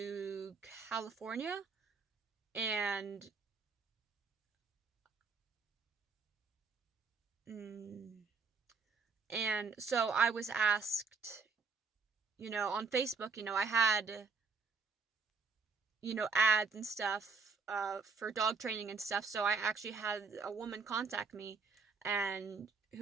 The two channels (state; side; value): quieter; left; 5.0 dB